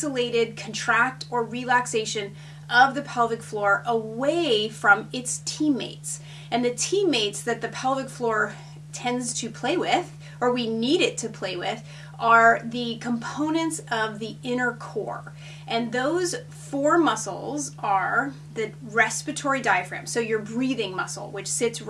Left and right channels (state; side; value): identical; both; correlation 1.00